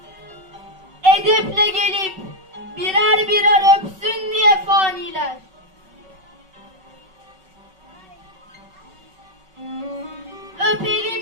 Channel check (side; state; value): left; late; 5.3 ms